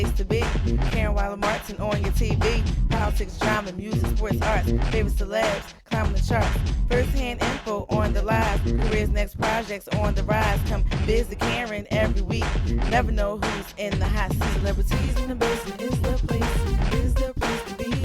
to be. Karen Wilder Martin on your TV. Politics, drama, music, sports, arts. Favorite celebs, climbing the charts. First-hand info on the live. Careers, next projects on the rise. Come visit Karen every week. Never know who's in the hot seat. Celebrities in the basement is the place to be.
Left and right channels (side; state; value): both; identical; correlation 1.00